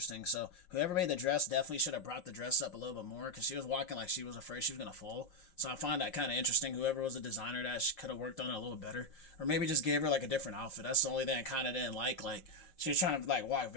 So whoever made the dress definitely should have brought the dress up a little bit more, because she was walking like she was afraid she was gonna fall. So I find that kind of interesting. Whoever was the designer, that she could have worked on it a little better, or maybe just gave her like a different outfit. That's the only thing I kind of didn't like she was trying to like walk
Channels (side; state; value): right; late; 5.6 ms